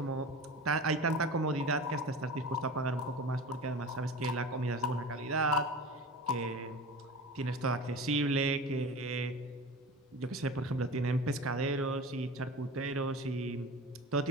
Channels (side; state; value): both; normal; correlation 0.34